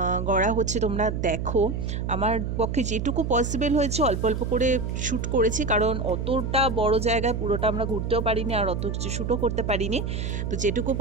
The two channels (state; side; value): noise; right; hum, 3 dB below the sound